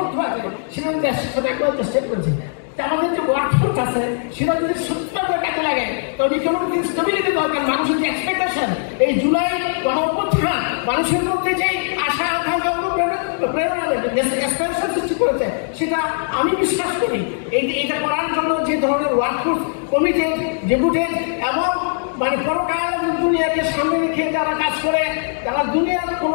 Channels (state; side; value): silent; right; digital silence